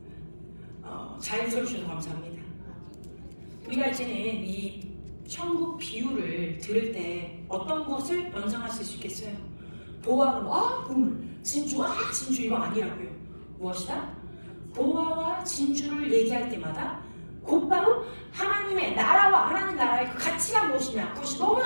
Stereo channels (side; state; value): both; inverted; correlation -1.00